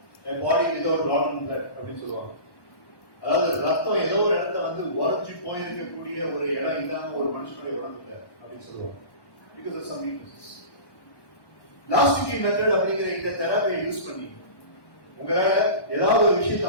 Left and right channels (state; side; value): late; right; 1.1 ms